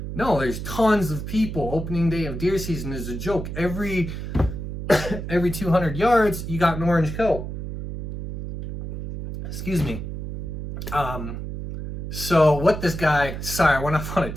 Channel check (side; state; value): right; noise; hum, 7 dB below the sound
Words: No, there's tons of people. Opening day of deer season is a joke. Every 200 yards, you got an orange coat. Excuse me. So what this guy, sorry, I went off on a